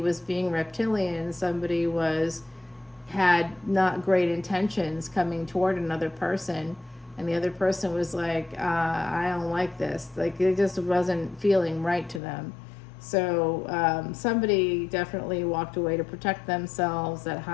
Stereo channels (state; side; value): drops out; right; at 12.2 s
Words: being reptilian. Somebody had not great intentions coming toward another person. And the other person was like, I don't like this. Like, it just wasn't feeling right to them. So somebody definitely walked away to protect themselves, that